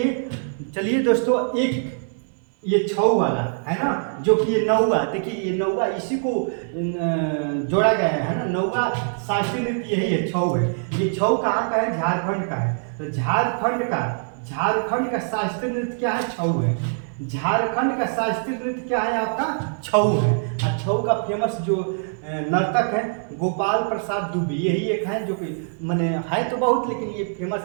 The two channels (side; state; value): left; silent; digital silence